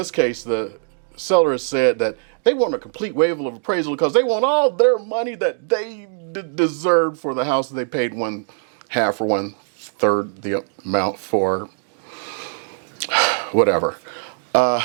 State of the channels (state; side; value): silent; left; digital silence